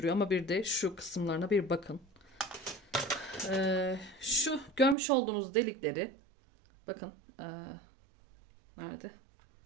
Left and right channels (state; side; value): drops out; left; at 5.0 s